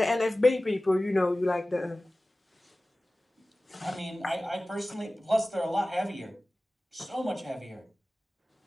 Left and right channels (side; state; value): both; normal; correlation 0.97